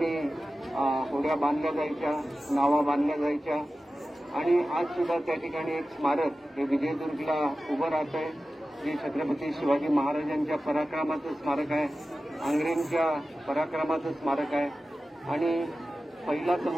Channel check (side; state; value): both; normal; correlation 0.94